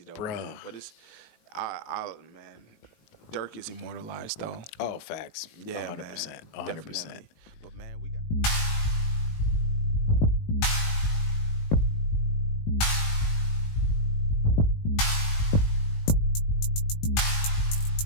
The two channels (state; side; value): late; right; 19 ms